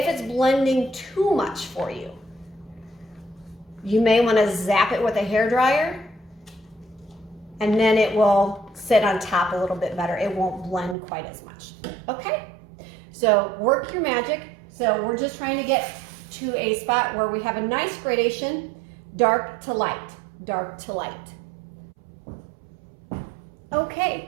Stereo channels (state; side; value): drops out; left; at 11.0 s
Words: it's blending too much for you, you may want to zap it with a hairdryer, and then it will sit on top a little bit better. It won't blend quite as much. Okay, so work your magic. So we're just trying to get to a spot where we have a nice gradation, dark to light, dark to light.